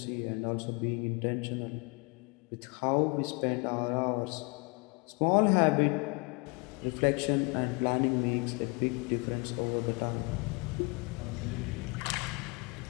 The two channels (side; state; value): right; quieter; 30.7 dB